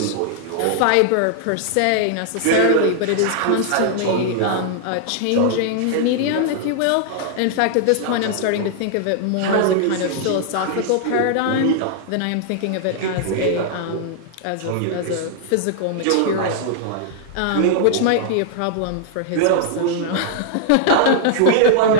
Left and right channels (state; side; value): different; both; correlation -0.01